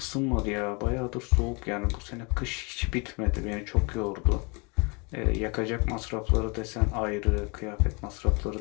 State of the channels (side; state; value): right; quieter; 30.6 dB